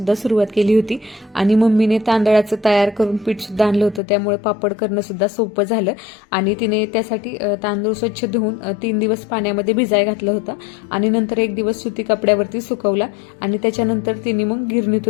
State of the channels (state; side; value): drops out; right; at 4.0 s